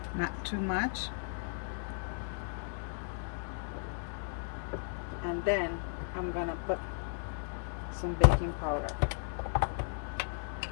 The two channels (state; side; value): silent; right; digital silence